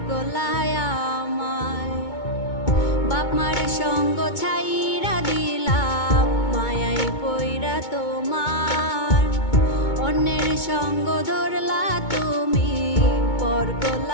করলায় আমায়। বাপ মার সঙ্গ ছাইরা দিলাম, মায়াই পইরা তোমার। অন্যের সঙ্গ ধরলা তুমি, পর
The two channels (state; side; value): late; right; 2.2 ms